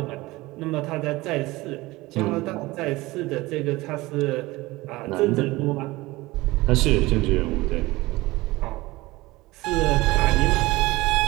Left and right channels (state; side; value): quieter; left; 20.3 dB